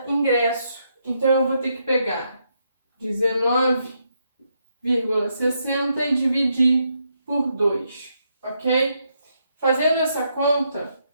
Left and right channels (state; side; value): inverted; both; correlation -0.78